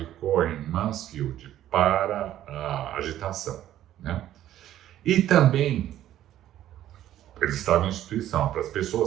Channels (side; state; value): left; quieter; 12.5 dB